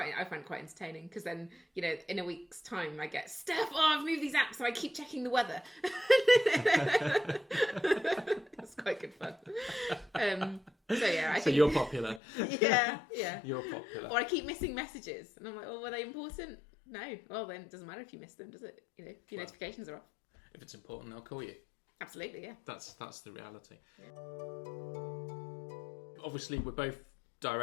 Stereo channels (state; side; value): drops out; right; at 12.2 s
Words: it quite entertaining, because then, in a week's time I get, Steph, I've moved these apps, so I keep checking the weather. It's quite good fun. So you're popular. Yeah. You're popular. Or I keep missing messages, and I'm like, were they important? No. Well, then it doesn't matter if you miss them, does it? If your notifications are off. If it's important, they'll call you. Absolutely, yeah. That's the reality. Yeah. Obviously, we're both